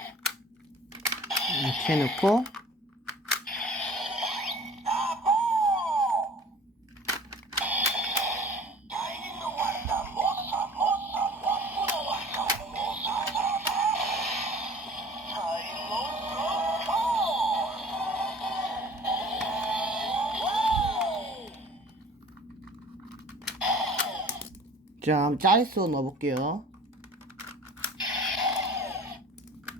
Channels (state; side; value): normal; both; correlation 0.46